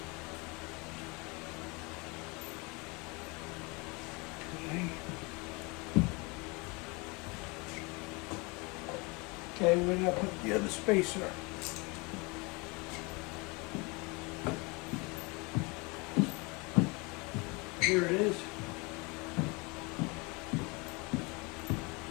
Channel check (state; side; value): quieter; right; 27.9 dB